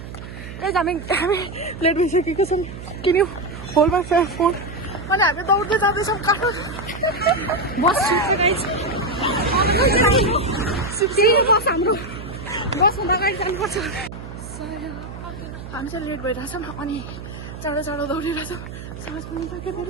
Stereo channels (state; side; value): noise; right; hum, 11 dB below the sound